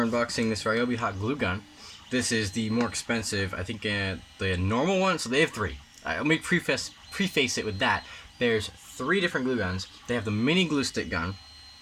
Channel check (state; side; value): identical; both; correlation 1.00